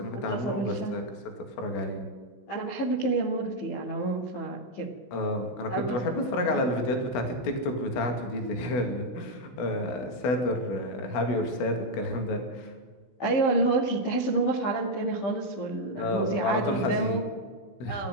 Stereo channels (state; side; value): late; right; 16 ms